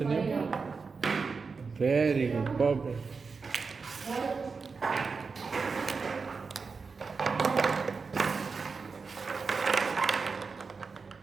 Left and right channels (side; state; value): left; quieter; 4.8 dB